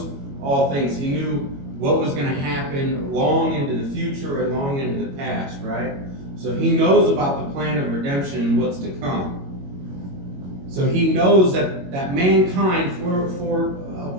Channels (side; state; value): left; late; 22 ms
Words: all things. He knew what was going to happen long into the future and long into the past, right? So he knows about the plan of redemption and what's to come. So he knows that mankind for a